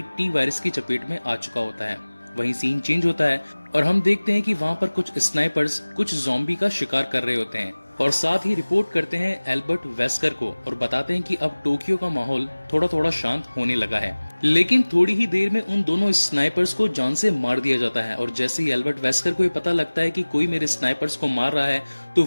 टी वायरस की चपेट में आ चुका होता है। वहीं सीन चेंज होता है और हम देखते हैं कि वहाँ पर कुछ स्नाइपर्स कुछ ज़ॉम्बी का शिकार कर रहे होते हैं और साथ ही रिपोर्ट करते हैं एल्बर्ट वेस्कर को और बताते हैं कि अब टोक्यो का माहौल थोड़ा थोड़ा शांत होने लगा है। लेकिन थोड़ी ही देर में उन दोनों स्नाइपर्स को जान से मार दिया जाता है और जैसे ही एल्बर्ट वेस्कर को ये पता लगता है कि कोई मेरे स्नाइपर्स को मार रहा है तो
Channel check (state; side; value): inverted; both; correlation -1.00